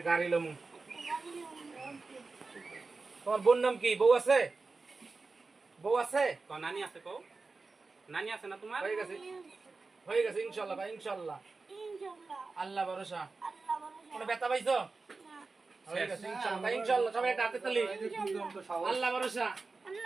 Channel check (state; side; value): quieter; left; 4.0 dB